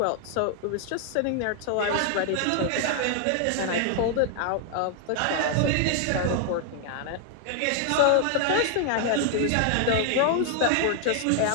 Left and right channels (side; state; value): both; different; correlation 0.00